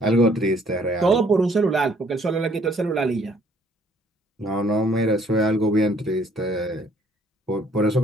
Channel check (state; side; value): normal; both; correlation 0.62